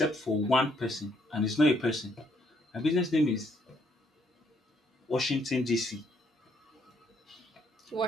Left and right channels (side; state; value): both; normal; correlation 0.70